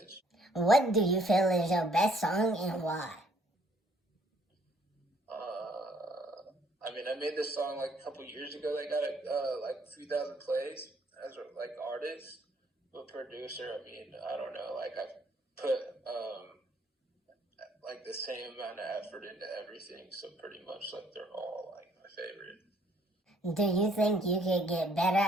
What do you feel is your best song and why? I mean, I made this song like a couple years ago. They got it like a few thousand plays as like artist, but producer. I mean, I don't know. Like I put like the same amount of effort into everything, so pretty much like they're all like my favorite. Do you think you could get better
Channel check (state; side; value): normal; both; correlation 0.64